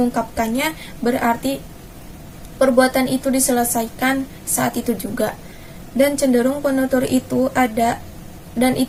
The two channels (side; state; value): both; identical; correlation 1.00